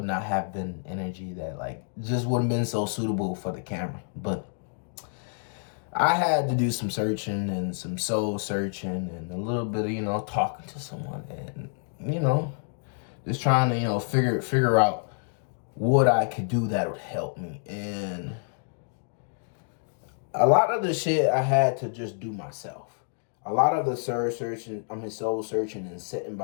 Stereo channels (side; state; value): right; silent; 59 dB below the other